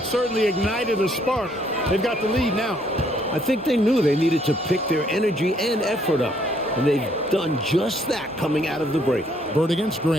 certainly ignited a spark. They've got the lead now. I think they knew they needed to pick their energy and effort up. And they've done just that coming out of the break. Bird against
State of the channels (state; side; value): normal; both; correlation 0.67